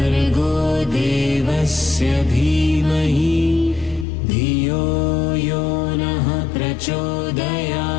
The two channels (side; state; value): right; drops out; at 4.0 s